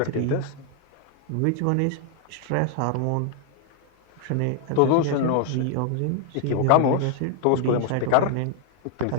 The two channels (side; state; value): both; different; correlation 0.00